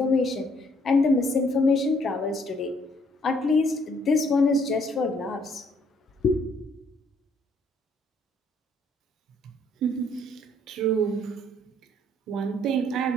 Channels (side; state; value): both; normal; correlation 0.66